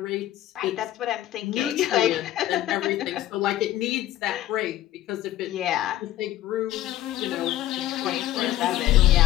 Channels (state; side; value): quieter; right; 13.8 dB